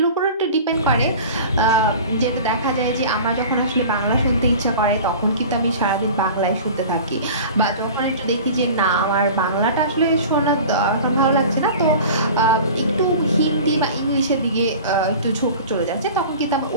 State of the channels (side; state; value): both; inverted; correlation -0.38